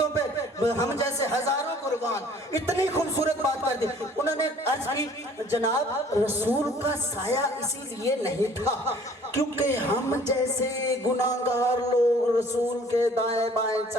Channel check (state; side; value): normal; both; correlation 0.54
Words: پہ ہم جیسے ہزاروں قربان، اتنی خوبصورت بات کر دی۔ انہوں نے عرض کی جناب رسول کا سایہ اسی لیے نہیں تھا کیونکہ ہم جیسے گناہگار لوگ رسول کے دائیں بائیں